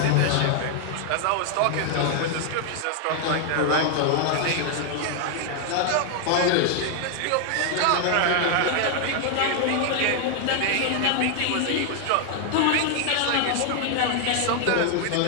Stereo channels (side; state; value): both; different; correlation 0.00